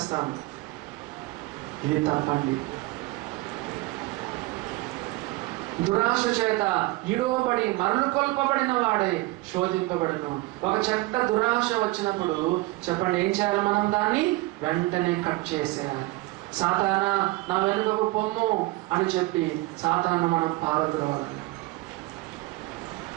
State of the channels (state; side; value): quieter; left; 21.0 dB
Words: ఇది తప్పండి. దురాశ చేత ఈడవబడి మరలు కొల్పబడిన వాడే శోధింపబడను. ఒక చెడ్డ దురాశ వచ్చినప్పుడు చెప్పండి, ఏం చేయాలి? మనం దాన్ని వెంటనే కట్ చేసేయాలి. సాతానా నా వెనుకకు పొమ్ము అని చెప్పి సాతాను మనం పారద్రోవాలి.